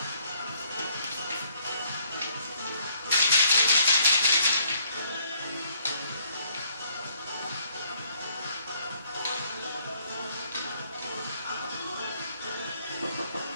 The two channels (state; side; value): inverted; both; correlation -0.65